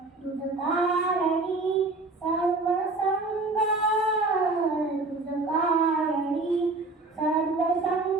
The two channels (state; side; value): quieter; left; 3.3 dB